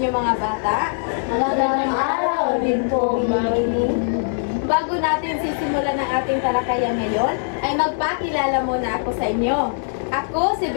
mga bata. Magandang araw din po, Mami. Bago natin sisimulan ang ating talakayan ngayon, ay magpakilala muna ako sa inyo. Ako si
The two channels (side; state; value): right; silent; digital silence